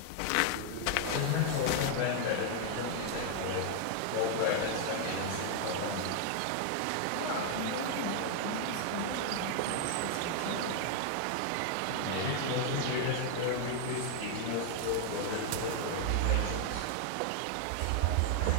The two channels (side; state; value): both; different; correlation 0.00